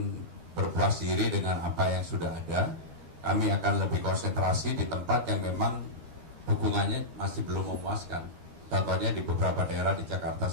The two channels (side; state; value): left; late; 13 ms